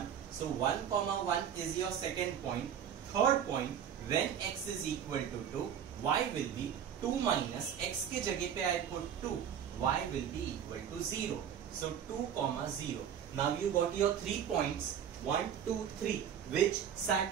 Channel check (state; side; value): quieter; left; 8.8 dB